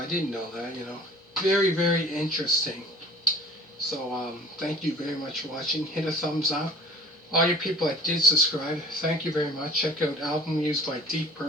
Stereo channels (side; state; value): both; normal; correlation 0.47